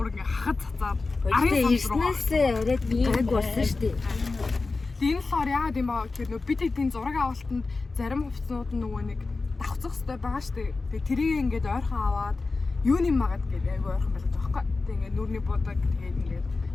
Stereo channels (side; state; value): right; quieter; 3.8 dB